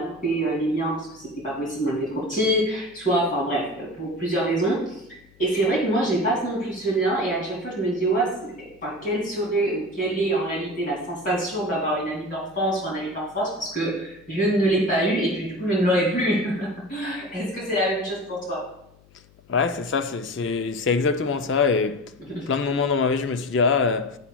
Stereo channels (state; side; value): noise; left; hum, 28 dB below the sound